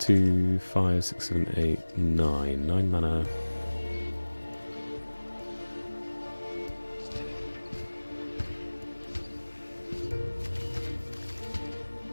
5, 6, 7, 8, 9. 9 mana.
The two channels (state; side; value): inverted; both; correlation -1.00